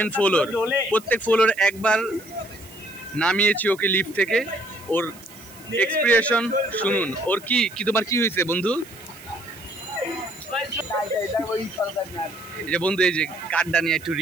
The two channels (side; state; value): right; noise; hiss, 21 dB below the sound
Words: ফ্লোর, প্রত্যেক ফ্লোর একবার নামিয়েছি ওকে লিফট থেকে। ওর এক্সপ্রেশন শুনুন। ওর কি তোমার কি হয়েছে বন্ধু? এই যে বন্ধু, এই যে কার্ডটা নিয়ে একটু